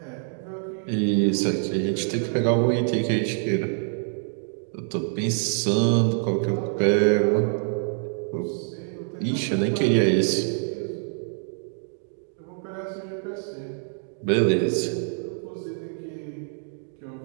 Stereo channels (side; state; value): left; silent; 61 dB below the other